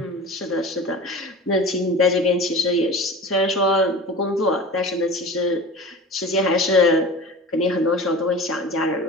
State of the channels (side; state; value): both; normal; correlation 0.35